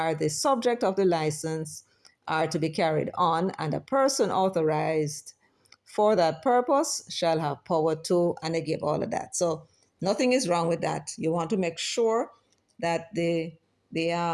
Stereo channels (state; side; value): identical; both; correlation 1.00